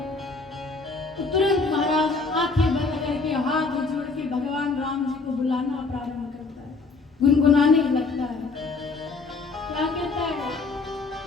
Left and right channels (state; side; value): quieter; right; 4.0 dB